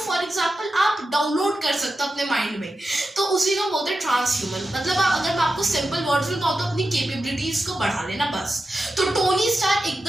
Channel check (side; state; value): both; normal; correlation 0.91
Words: एग्जांपल आप डाउनलोड कर सकते हो अपने माइंड में, तो उसी को बोलते हैं ट्रांस ह्यूमन। मतलब अगर मैं आपको सिंपल वर्ड्स में कहूं तो अपनी कैपेबिलिटीज को बढ़ा लेना बस। तो टोनी स्टार